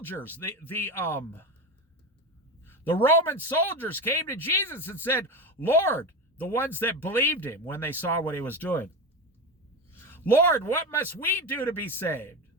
the Roman soldiers came to Jesus and said, "Lord," the ones that believed him when they saw what he was doing, "Lord, what must we do to be saved?"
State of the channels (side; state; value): both; normal; correlation 0.20